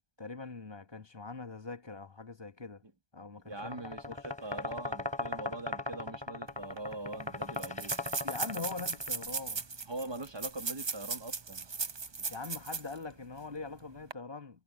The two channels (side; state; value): left; late; 1.2 ms